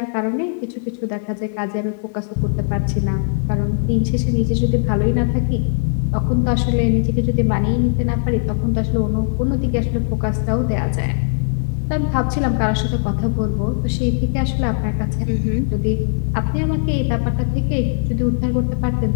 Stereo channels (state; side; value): silent; right; 66 dB below the other